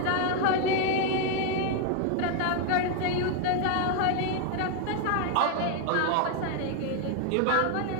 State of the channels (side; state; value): both; different; correlation 0.00